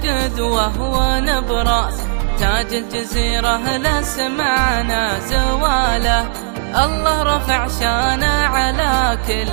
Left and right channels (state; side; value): silent; left; digital silence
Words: ونبراس، تاج الجزيرة لا سمعنا زواله. الله رفع شانه على